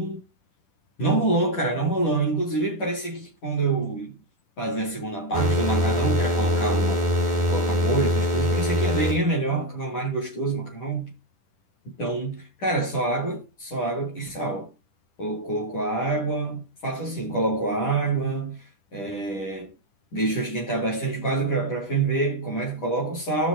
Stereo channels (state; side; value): late; right; 10 ms